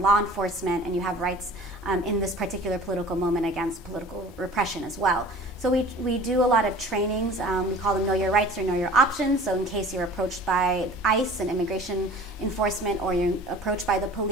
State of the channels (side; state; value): both; normal; correlation 0.44